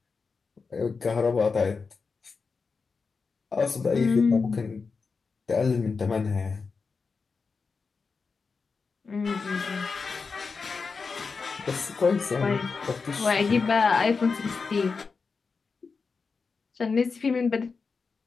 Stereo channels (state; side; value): quieter; right; 4.8 dB